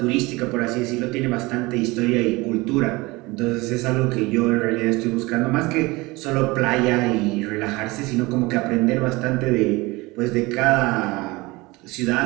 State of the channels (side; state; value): left; quieter; 22.7 dB